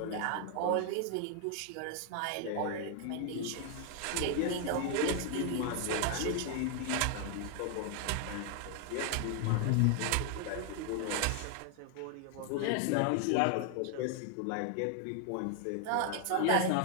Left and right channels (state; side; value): different; both; correlation 0.00